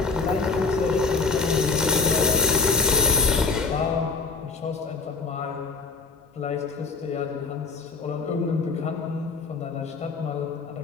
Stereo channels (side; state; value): right; quieter; 4.4 dB